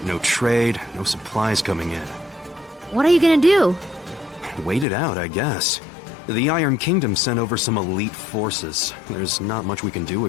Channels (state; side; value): drops out; right; at 4.9 s